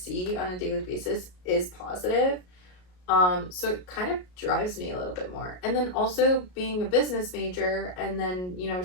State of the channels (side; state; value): right; late; 33 ms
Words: on a daily basis is positive, so it kind of drives me a little bit more. And then also being a business major and then